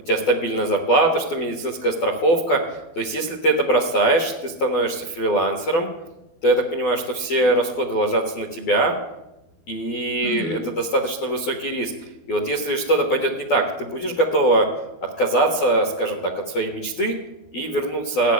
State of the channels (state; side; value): late; right; 12 ms